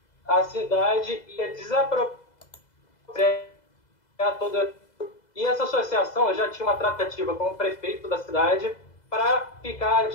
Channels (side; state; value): right; late; 2.0 ms